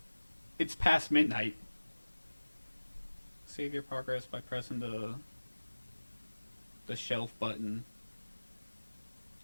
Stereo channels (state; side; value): inverted; both; correlation -1.00